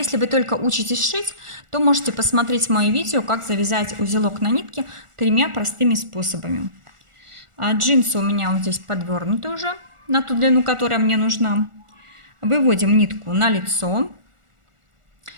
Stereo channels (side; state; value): left; late; 1.4 ms